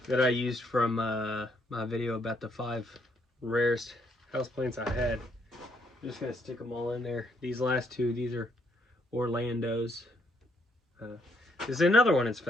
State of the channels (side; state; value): both; normal; correlation 0.72